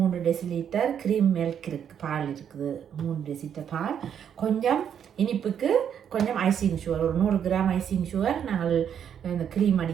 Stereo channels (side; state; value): left; quieter; 8.6 dB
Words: டெசிலிட்டர் க்ரீம் மில்க் இருக்குது, பால் இருக்குது. 3 டெசிலிட்டர் பால். கொஞ்சம் இனிப்புக்கு கொஞ்சம் ஐசிங் சுகர், ஒரு 100 கிராம் ஐசிங் சுகர் நாங்கள் இந்த க்ரீம்